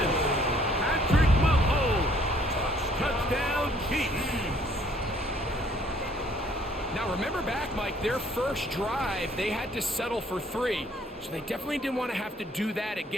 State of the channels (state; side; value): normal; both; correlation 0.62